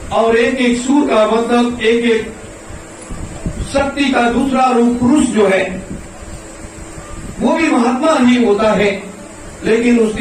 और एक एक सूर का मतलब एक एक शक्ति का दूसरा रूप पुरुष जो है वो भी महात्मा ही होता है, लेकिन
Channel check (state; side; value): identical; both; correlation 1.00